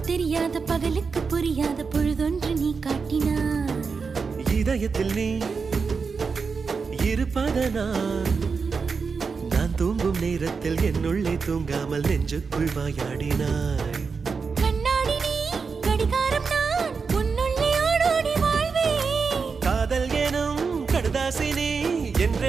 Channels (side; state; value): left; quieter; 5.1 dB